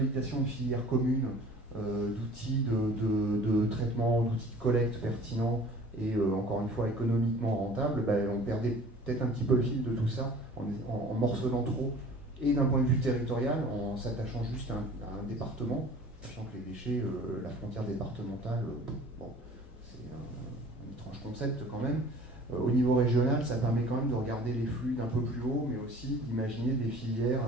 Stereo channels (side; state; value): both; normal; correlation 0.47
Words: de filières communes, d'outils de traitement, d'outils de collecte pertinents et encore une fois économiquement rentables, on perdait peut-être un petit peu le fil de tout ça en morcelant trop, et d'un point de vue territorial, en s'attachant juste à un département, sachant que les déchets, la frontière départementale, c'est un étrange concept quand même. Au niveau régional, ça permet quand même de regarder les flux d'un peu plus haut, mais aussi d'imaginer des filières